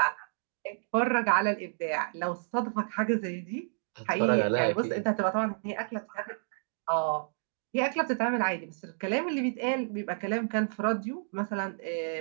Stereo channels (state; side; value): silent; left; digital silence